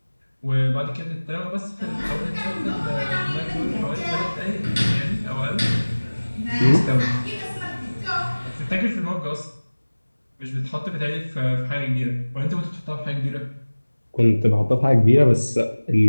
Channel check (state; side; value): inverted; both; correlation -1.00